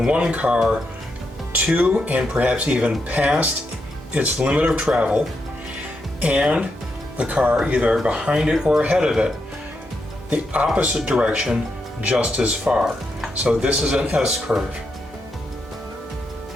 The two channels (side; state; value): both; normal; correlation 0.83